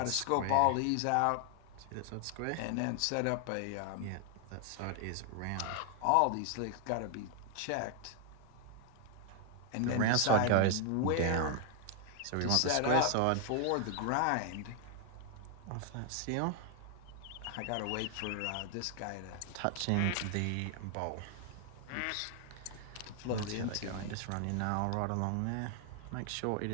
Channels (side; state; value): both; different; correlation 0.00